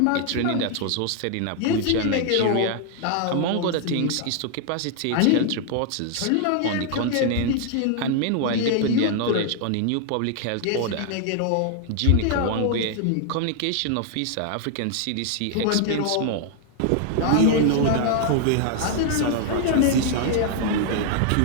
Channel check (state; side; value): different; both; correlation 0.00